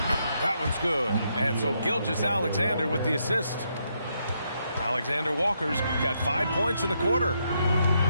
That one's good. And so Gilgeous-Alexander with the assist. Alexander Walker's got 5 points in the quarter.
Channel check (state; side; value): inverted; both; correlation -0.78